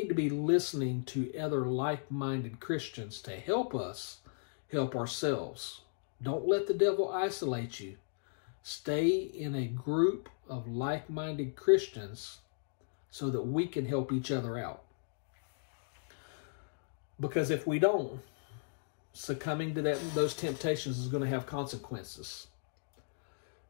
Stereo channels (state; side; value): silent; right; digital silence